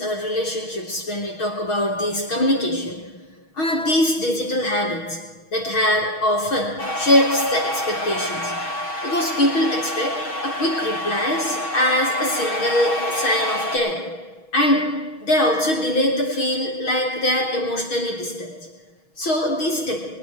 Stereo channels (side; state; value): right; late; 6.3 ms